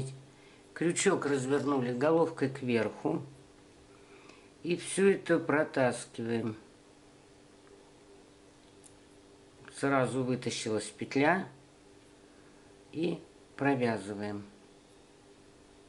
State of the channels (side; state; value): both; identical; correlation 1.00